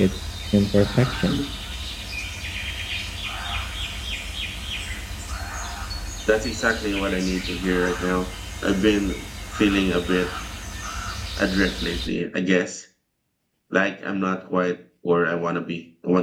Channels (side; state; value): both; identical; correlation 1.00